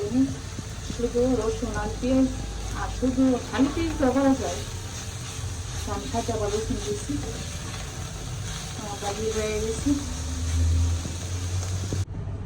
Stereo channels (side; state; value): both; identical; correlation 1.00